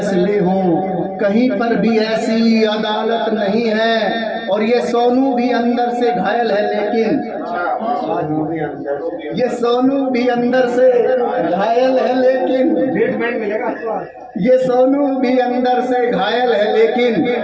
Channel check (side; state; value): both; identical; correlation 1.00